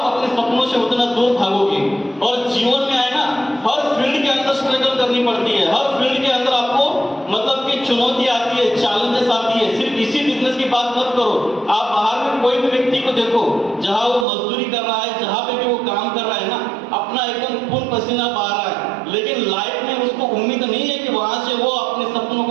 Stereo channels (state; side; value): drops out; left; at 14.2 s